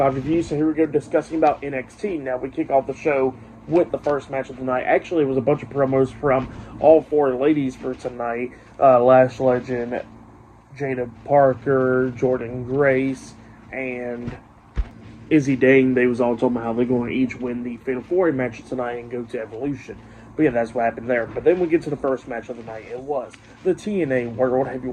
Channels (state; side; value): identical; both; correlation 1.00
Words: review. So here we go, discussing about NXT. Now, we kick off the show with the first match of the night. Actually, it was a bunch of promos from all four ladies for tonight. Lash Legend, Jada Parker, Jordan Grace, and Izzy Dane. They was all talking about how they're going to each win the Fatal 4 match tonight and go to Evolution. But yeah, that's what happened there. But then we get to the first match of the night. It was the TNA World